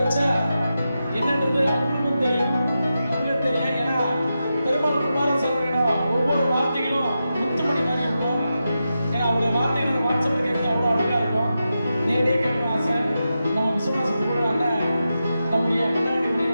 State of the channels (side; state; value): both; inverted; correlation -0.89